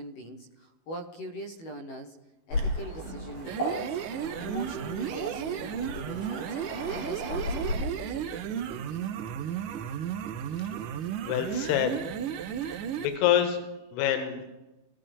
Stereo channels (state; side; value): late; right; 18 ms